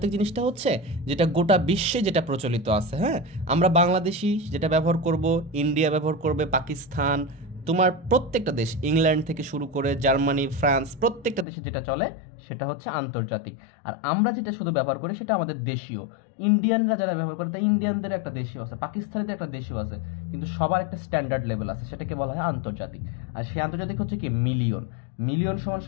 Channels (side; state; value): right; drops out; at 11.5 s